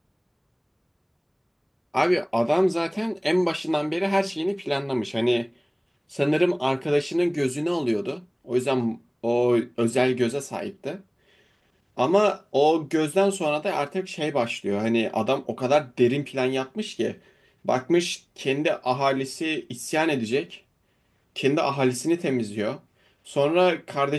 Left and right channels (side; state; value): both; identical; correlation 1.00